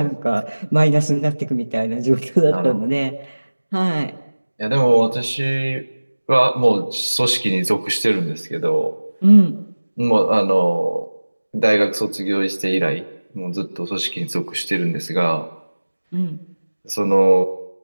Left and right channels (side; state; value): both; inverted; correlation -1.00